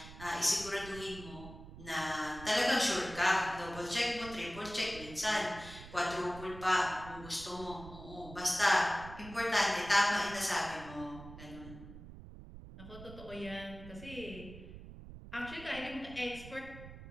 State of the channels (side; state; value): right; noise; rumble, 14 dB below the sound